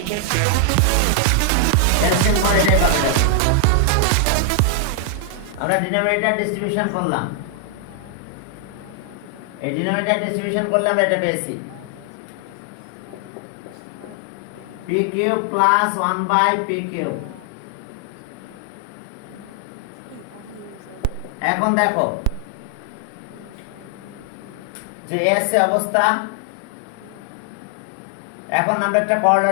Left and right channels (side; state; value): both; different; correlation 0.00